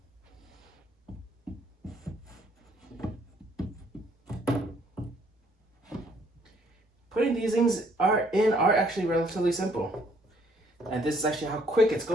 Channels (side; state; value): both; normal; correlation 0.64